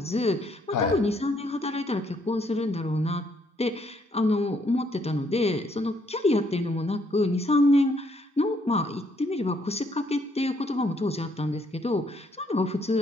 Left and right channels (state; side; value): normal; both; correlation 0.70